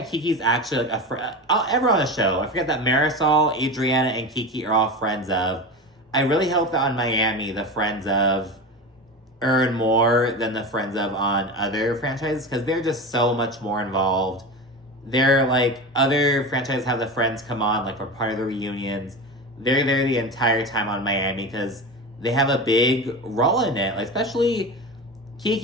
Kiki's actually like a friend. Everyone on the show. I forget that Marisol, Adriana, and Kiki are all friends of. I really hope that on Miami, the friends of earn more than the friends of on other franchises because they're just so much more involved. They're like, other franchises have the friends come on like for part of the reunions. They're there the entire time on Miami because they have a big role in it. Like, especially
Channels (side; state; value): both; normal; correlation 0.26